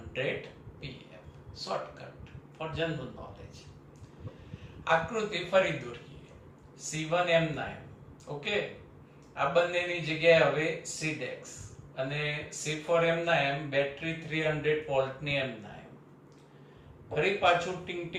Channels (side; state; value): both; identical; correlation 1.00